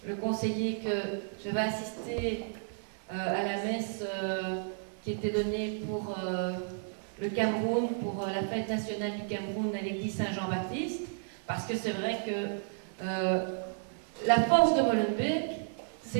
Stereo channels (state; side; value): silent; left; 56 dB below the other